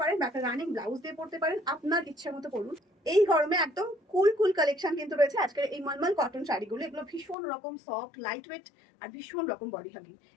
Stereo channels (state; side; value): drops out; right; at 7.4 s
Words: পারেন বা একটা রানিং ব্লাউজ দিয়ে পড়তে পারেন, আপনার ইচ্ছে মতো পড়ুন। এই গরমে একদম কুল কুল কালেকশন কিন্তু রয়েছে আজকের এই মলমল কটন শাড়িগুলো। এগুলো ভীষণ রকম সফট, লাইট ওয়েট আর ভীষণ রকম বডি হাগিং।